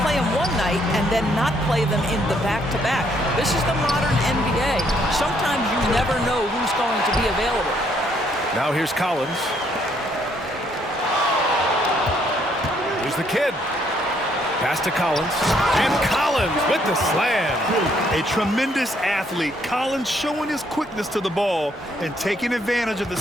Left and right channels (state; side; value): normal; both; correlation 0.69